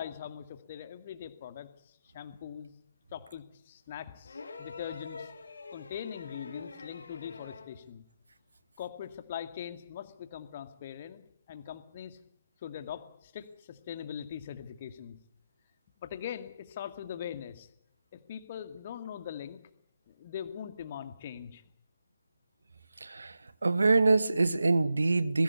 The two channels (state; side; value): inverted; both; correlation -0.89